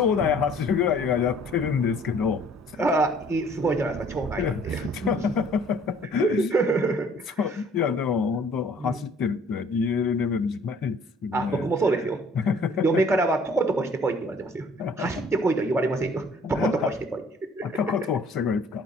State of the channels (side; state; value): both; normal; correlation 0.55